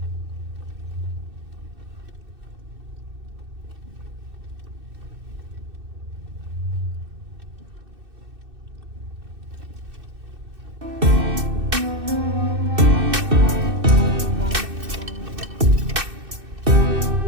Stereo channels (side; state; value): left; late; 2.6 ms